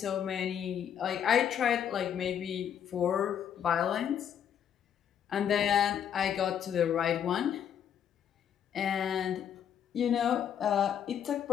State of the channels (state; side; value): quieter; right; 8.9 dB